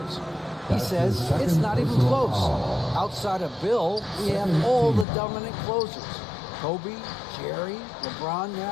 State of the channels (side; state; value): right; drops out; at 5.1 s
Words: He says it's not even close. Outside of Bill, we have all the dominant closers. Kobe, Jerry, LeBron